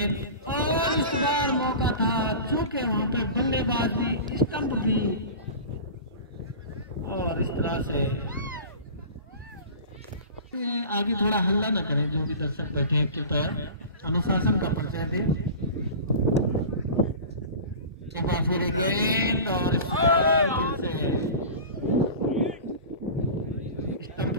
और इस बार मौका था, चूंकि वहां पे बल्लेबाज भी स्टंप भी, और इस तरह से आगे थोड़ा हल्ला ना करें जो भी दर्शक बैठे हैं, कृपया अनुशासन का परिचय दें। एक बार फिर गेंद और इस बार फिर से स्टंप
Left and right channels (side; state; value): both; inverted; correlation -0.35